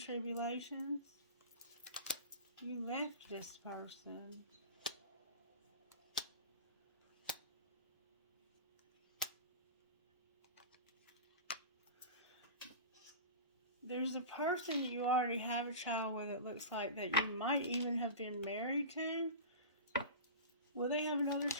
You left this person. There's a person that you already have a child with, it looks like, that you might even have been married to. Will they have another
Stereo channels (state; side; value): inverted; both; correlation -0.31